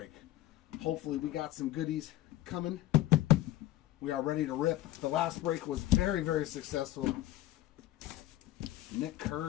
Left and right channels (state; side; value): quieter; right; 14.8 dB